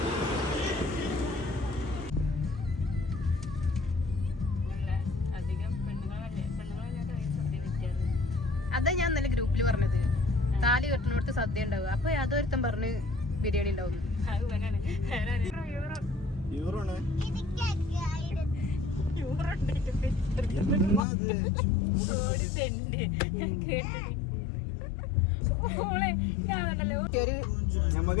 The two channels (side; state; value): right; drops out; at 21.0 s